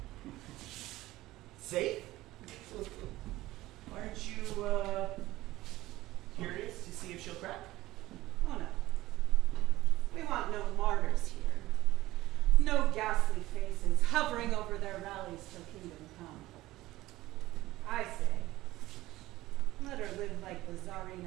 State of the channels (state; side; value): quieter; left; 17.1 dB